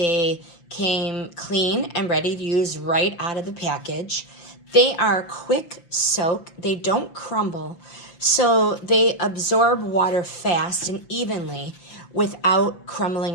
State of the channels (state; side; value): late; right; 5.8 ms